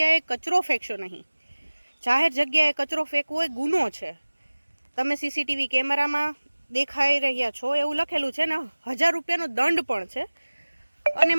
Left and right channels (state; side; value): inverted; both; correlation -1.00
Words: કચરો ફેંકશો નહીં. જાહેર જગ્યાએ કચરો ફેંકવો એ ગુનો છે. તમે સીસીટીવી કેમેરામાં દેખાઈ રહ્યા છો એવું લખેલું છે ને 1000 રૂપિયાનો દંડ પણ છે અને